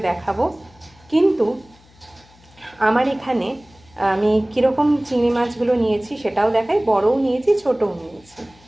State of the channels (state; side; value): noise; left; hum, 28 dB below the sound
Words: দেখাবো। কিন্তু আমার এখানে আমি কীরকম চিংড়ি মাছগুলো নিয়েছি সেটাও দেখাই, বড়ও নিয়েছি ছোটও নিয়েছি।